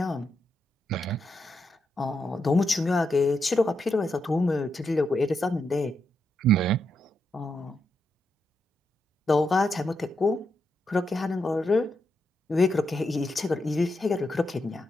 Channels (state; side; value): normal; both; correlation 0.83